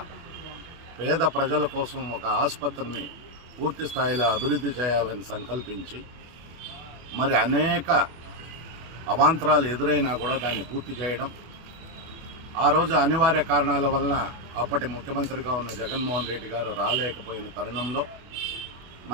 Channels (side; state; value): left; late; 24 ms